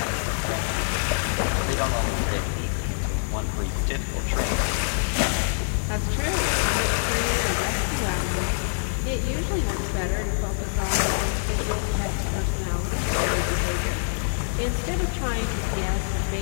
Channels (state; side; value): silent; right; 62 dB below the other